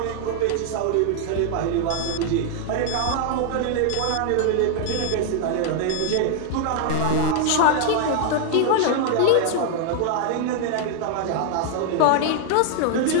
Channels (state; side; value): different; both; correlation 0.00